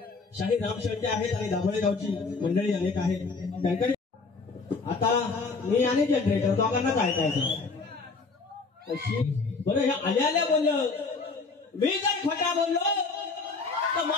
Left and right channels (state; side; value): quieter; right; 4.3 dB